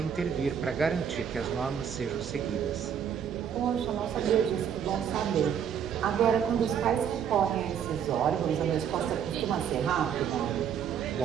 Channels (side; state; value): left; quieter; 8.3 dB